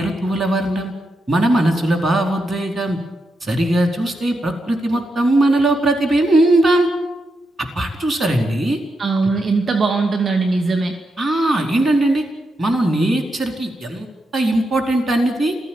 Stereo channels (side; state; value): both; normal; correlation 0.85